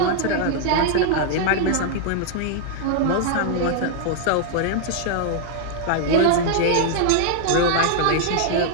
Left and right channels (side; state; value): both; different; correlation -0.01